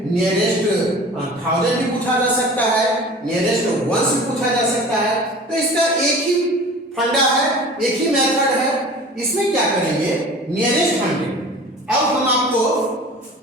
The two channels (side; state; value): both; normal; correlation 0.41